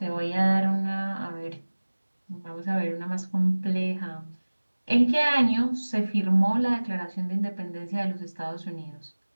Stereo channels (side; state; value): both; inverted; correlation -1.00